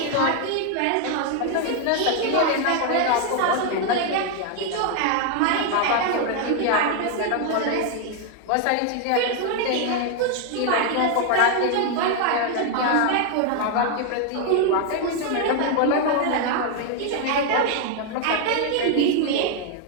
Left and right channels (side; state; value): both; different; correlation 0.00